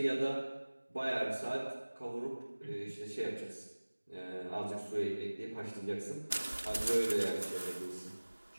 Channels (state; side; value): inverted; both; correlation -1.00